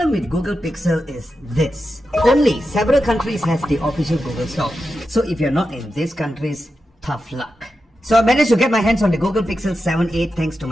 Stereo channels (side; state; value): both; normal; correlation 0.90